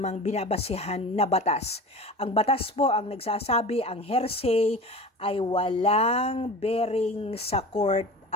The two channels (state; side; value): normal; both; correlation 0.34